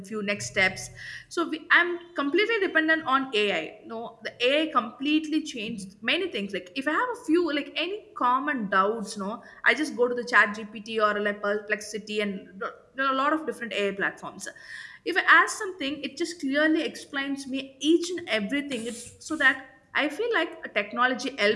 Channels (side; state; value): both; identical; correlation 1.00